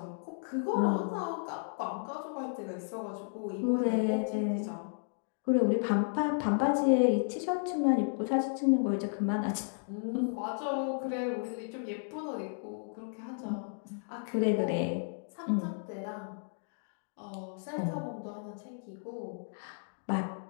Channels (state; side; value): silent; right; digital silence